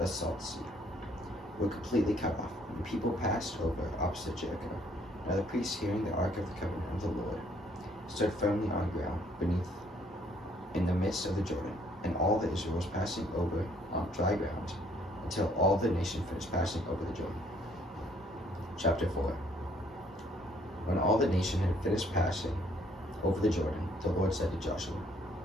salt sea. were completely cut off. The people passed over opposite Jericho. Now the priests, hearing the ark of the covenant of the Lord, stood firmly on ground beneath in the midst of the Jordan, and all the Israel was passing over on dry ground until all the nation finished passing over the Jordan. Chapter 4. When all the nation had finished passing over the Jordan, the Lord said to Joshua,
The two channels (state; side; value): normal; both; correlation 0.64